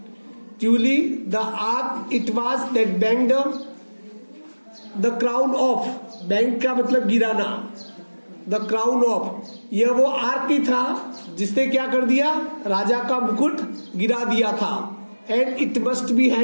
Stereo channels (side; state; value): both; inverted; correlation -1.00